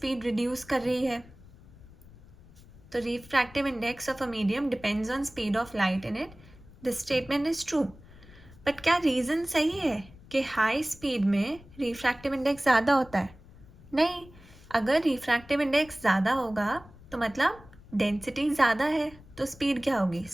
रिड्यूस कर रही है. तो refractive index of a medium depends on speed of light in it, this statement is true. But क्या रीज़न सही है कि हाई स्पीड में रिफ्रैक्टिव इंडेक्स ज़्यादा होता है? नहीं. अगर रिफ्रैक्टिव इंडेक्स ज़्यादा होगा तो मतलब डेंसिटी ज़्यादा है, तो स्पीड क्या होगी,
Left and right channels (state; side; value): noise; left; rumble, 22 dB below the sound